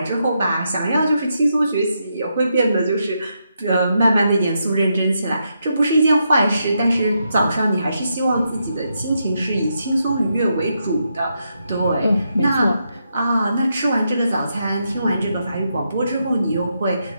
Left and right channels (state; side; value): inverted; both; correlation -0.81